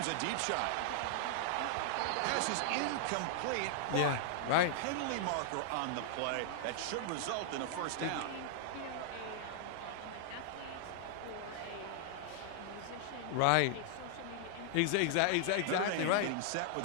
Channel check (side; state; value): both; different; correlation -0.01